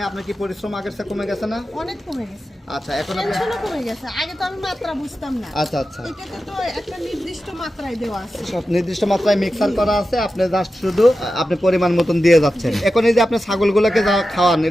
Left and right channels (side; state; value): both; normal; correlation 0.92